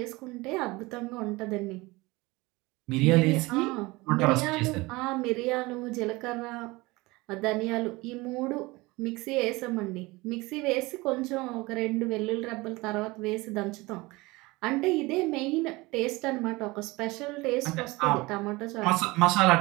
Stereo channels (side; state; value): left; quieter; 22.3 dB